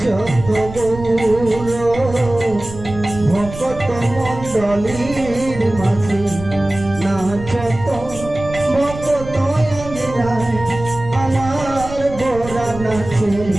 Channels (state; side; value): noise; right; rumble, 12 dB below the sound